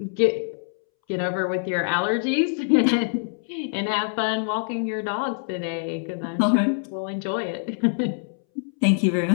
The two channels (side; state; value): right; silent; 62 dB below the other